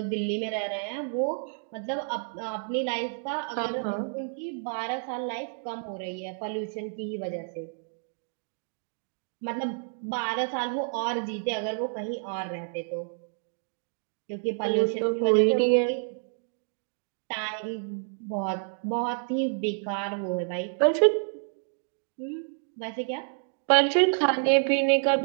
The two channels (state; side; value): silent; left; 58 dB below the other